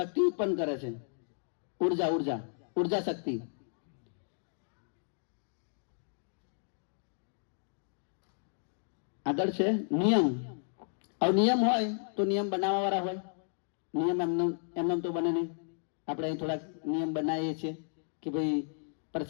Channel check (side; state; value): right; silent; digital silence